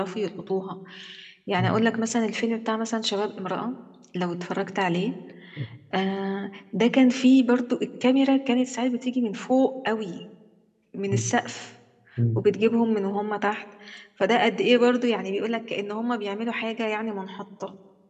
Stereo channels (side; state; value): both; identical; correlation 1.00